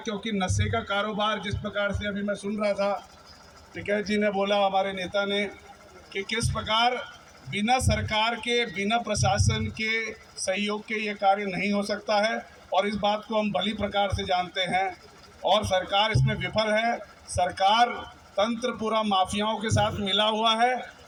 नशे का कारोबार जिस प्रकार से अभी मैं सुन रहा था, टिकैत जी ने बोला, हमारे नेता ने, कि किस प्रकार बिना सरकार के, बिना प्रशासन के सहयोग के ये कार्य नहीं हो सकता है, और इस बात को हम भली प्रकार से जानते हैं और सरकार इसमें विफल है। सरकार तंत्र पूरा माफियाओं के साथ मिला हुआ है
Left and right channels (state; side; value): identical; both; correlation 1.00